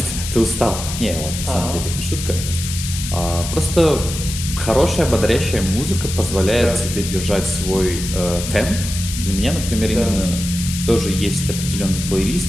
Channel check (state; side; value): noise; left; hiss, 7 dB below the sound